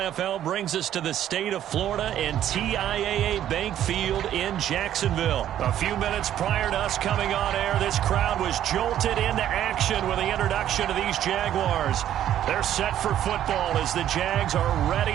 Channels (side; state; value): left; quieter; 11.3 dB